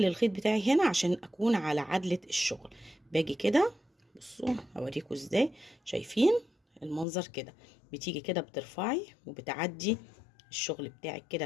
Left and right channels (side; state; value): right; drops out; at 7.1 s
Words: الخيط بتاعي هنا عشان اكون على عدلة الشغل. باجي كده، بصوا هوريكم ازاي. شايفين المنظر كده؟ بتيجي كده بترفعي وبتعدي الشغل بتاعك كده